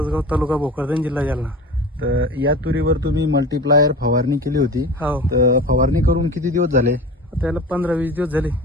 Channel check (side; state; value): both; normal; correlation 0.34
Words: तालुका भोकरदन, जिल्हा जालना. तर या तुरीवर तुम्ही मल्टीप्लायर फवारणी केली होती. हो, तर फवारणी करून किती दिवस झाले? त्याला 15-20 दिवस झाले.